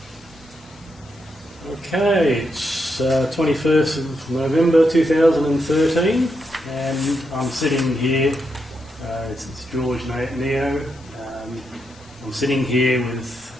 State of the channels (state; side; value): normal; both; correlation 0.82